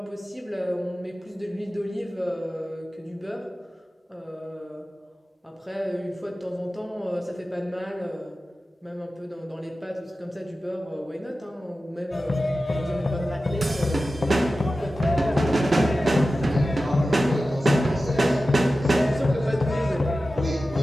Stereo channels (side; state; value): both; normal; correlation 0.94